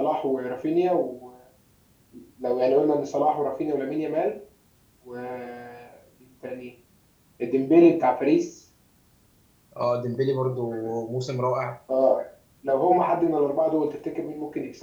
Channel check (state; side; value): identical; both; correlation 1.00